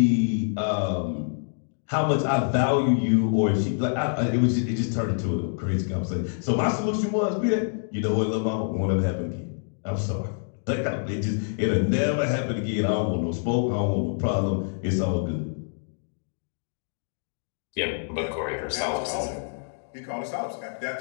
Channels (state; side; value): silent; right; digital silence